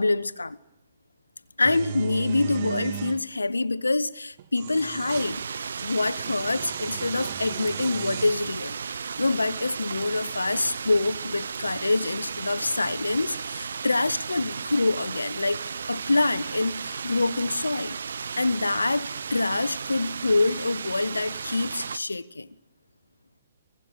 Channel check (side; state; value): both; inverted; correlation -0.94